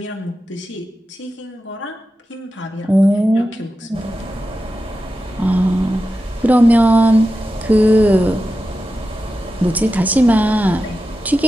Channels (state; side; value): normal; both; correlation 0.92